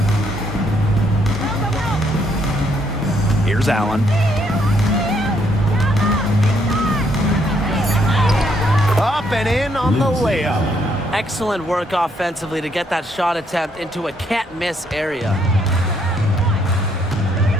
Here's Allen. Up and in on the layup. Excellent work offensively to get that shot attempt into a can't-miss area.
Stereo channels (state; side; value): normal; both; correlation 0.71